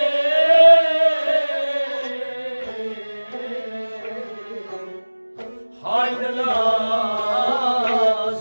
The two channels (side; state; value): both; inverted; correlation -1.00